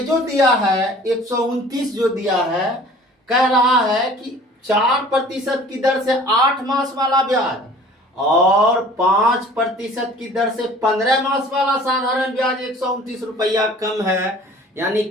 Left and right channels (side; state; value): both; normal; correlation 0.48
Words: दिया है 129 जो दिया है, कह रहा है कि 4% की दर से 8 मास वाला ब्याज और 5% की दर से 15 मास वाला साधारण ब्याज 129 रुपया कम है, यानी